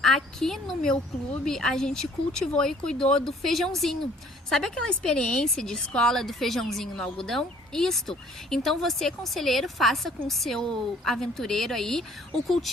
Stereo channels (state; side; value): normal; both; correlation 0.57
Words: aqui no meu clube a gente cultivou e cuidou do feijãozinho. Sabe aquela experiência de escola do feijãozinho no algodão? Isto. Então você, conselheiro, faça com o seu aventureiro aí o